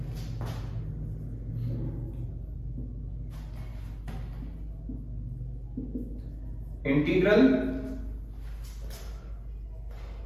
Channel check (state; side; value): identical; both; correlation 1.00